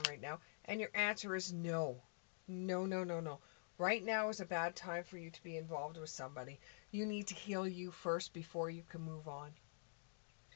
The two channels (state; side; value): silent; right; digital silence